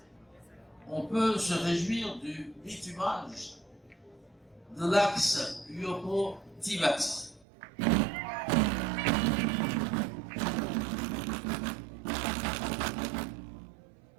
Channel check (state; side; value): drops out; left; at 7.5 s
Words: on peut se réjouir du bitumage de l'axe Yoko-Tibati.